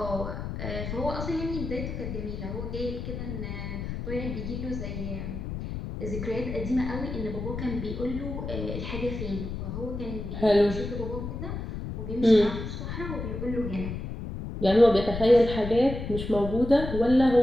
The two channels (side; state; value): left; noise; rumble, 6 dB below the sound